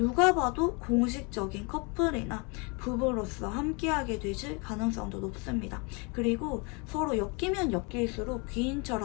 봐도 공식적인 커플이나 부부로서 함께하게 되실 가능성도 높습니다. 그리고 서로 엮이면 엮일수록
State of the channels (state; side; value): quieter; right; 31.4 dB